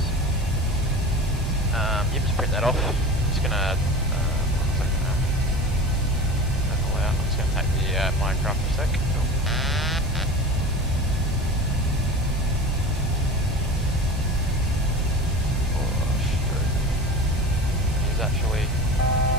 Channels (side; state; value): both; normal; correlation 0.33